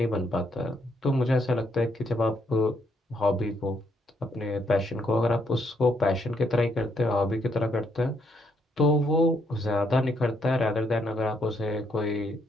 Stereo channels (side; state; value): both; normal; correlation 0.74